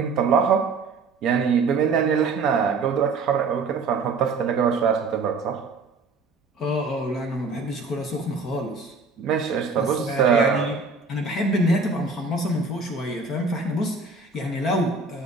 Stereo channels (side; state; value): left; quieter; 4.1 dB